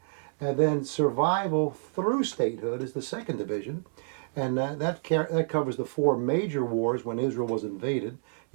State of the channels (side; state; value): left; silent; digital silence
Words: and then Survival through Statehood is the second division. And that covers the 4 major wars when Israel was invaded,